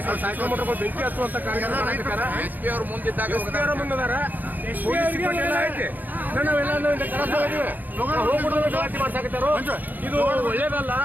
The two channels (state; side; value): late; left; 0.085 ms